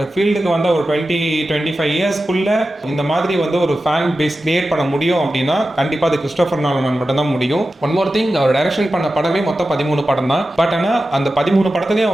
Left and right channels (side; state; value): both; normal; correlation 0.93